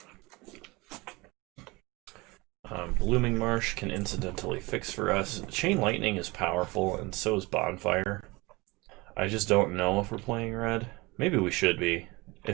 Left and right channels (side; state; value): left; quieter; 23.6 dB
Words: Blooming Marsh can incidentally fix for us. Chain Lightning is powerful, and so is Bonfire. I just don't know if we're playing red. Maybe we should be.